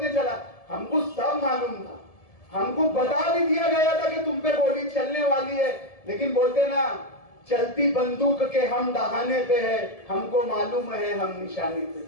चला। हमको सब मालूम था। हमको बता भी दिया गया था कि तुम पे गोली चलने वाली है, लेकिन बोलते ना चलती बंदूक के हम दहाने पे है, हमको मालूम है हम निशाने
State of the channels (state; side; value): late; right; 1.7 ms